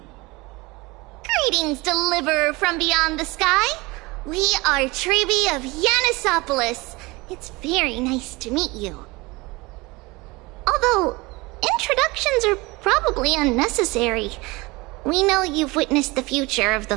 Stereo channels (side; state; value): left; quieter; 23.5 dB